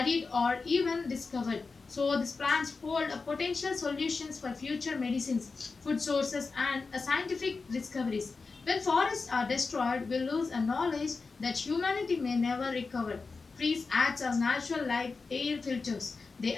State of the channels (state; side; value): quieter; right; 4.3 dB